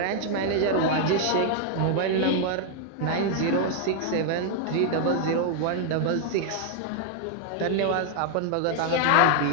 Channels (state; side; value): different; both; correlation 0.00